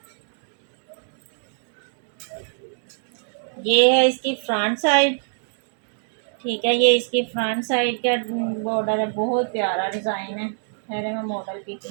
ये है इसकी फ्रंट साइड, ठीक है। ये इसकी फ्रंट साइड का बॉर्डर है, बहुत प्यारा डिज़ाइन है। पहले मैं मॉडल पिक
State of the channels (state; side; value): silent; left; digital silence